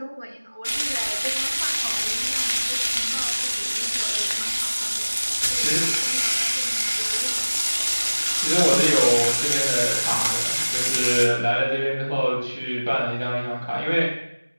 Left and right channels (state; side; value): inverted; both; correlation -1.00